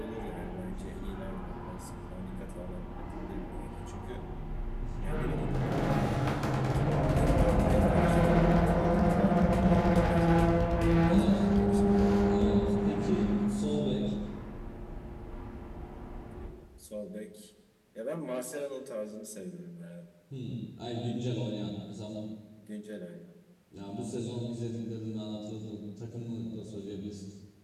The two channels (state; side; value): identical; both; correlation 1.00